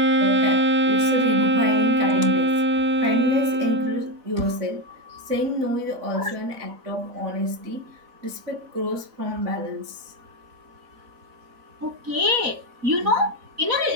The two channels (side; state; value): left; late; 4.0 ms